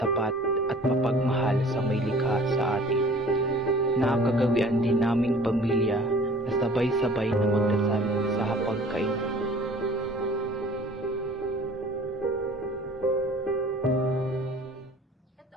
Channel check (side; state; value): both; normal; correlation 0.48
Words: at mapagmahal sa may likha sa atin. Nakagawian din naming pamilya na sabay-sabay na magdasal sa hapagkainan. Eto